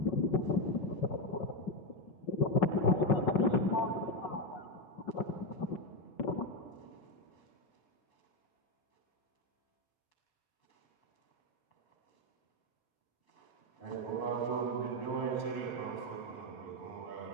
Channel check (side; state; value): right; late; 5.0 ms